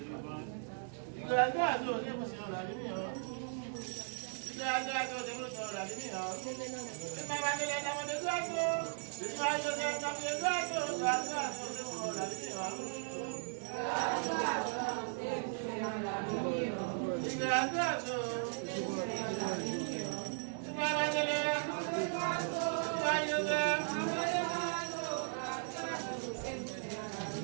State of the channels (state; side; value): silent; left; digital silence